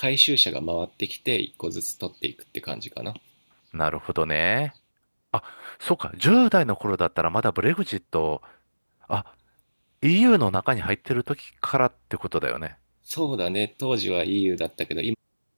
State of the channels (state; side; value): inverted; both; correlation -1.00